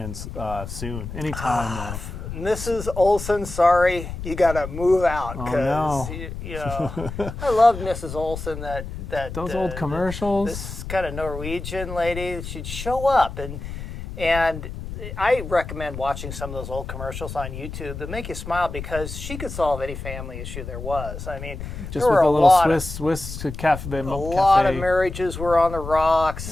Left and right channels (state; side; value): noise; left; rumble, 9 dB below the sound